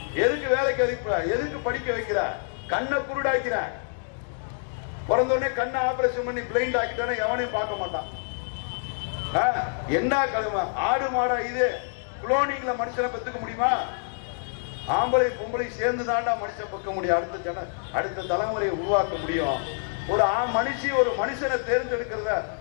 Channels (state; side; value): silent; right; digital silence